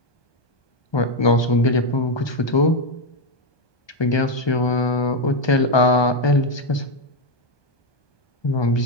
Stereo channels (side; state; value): right; late; 1.2 ms